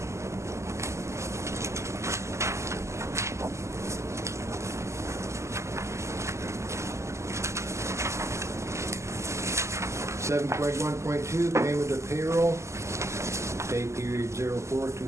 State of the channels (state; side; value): late; left; 0.13 ms